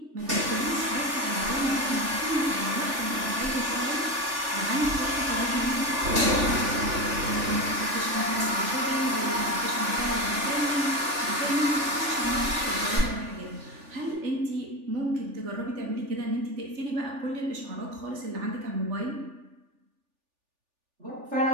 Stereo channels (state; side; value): late; left; 3.4 ms